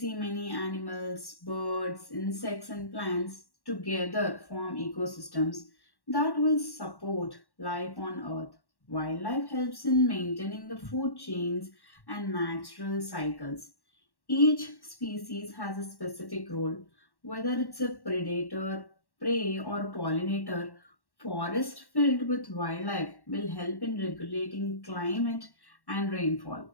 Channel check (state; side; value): late; right; 1.1 ms